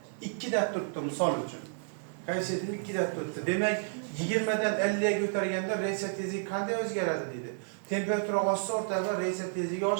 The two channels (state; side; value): silent; left; 57 dB below the other